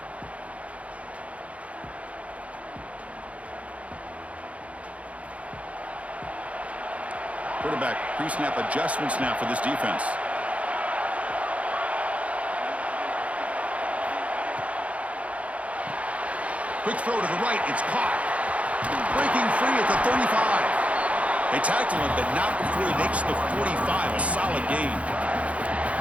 Quarterback pre-snap adjustments now for this defense. Quick throw to the right. It's caught. Breaking free at the 35. They tackle him, but not before he makes the 45. A solid gain.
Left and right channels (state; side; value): late; left; 0.065 ms